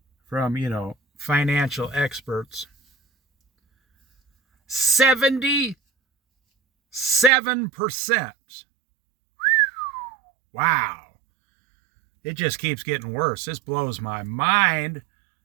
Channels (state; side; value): drops out; left; at 7.3 s